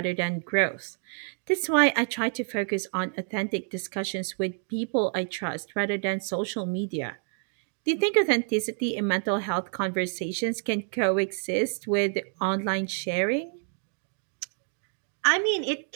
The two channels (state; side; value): silent; left; 57 dB below the other